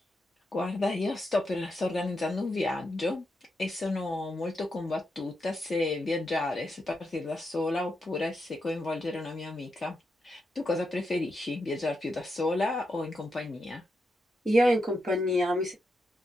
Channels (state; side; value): normal; both; correlation 0.85